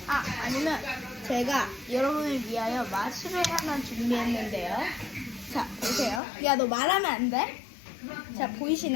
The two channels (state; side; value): drops out; right; at 6.2 s